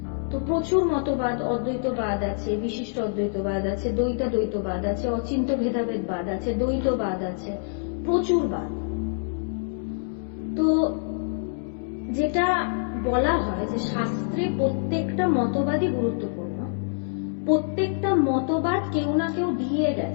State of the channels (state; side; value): silent; right; digital silence